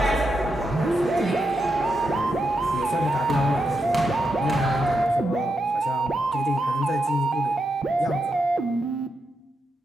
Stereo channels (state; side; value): normal; both; correlation 0.84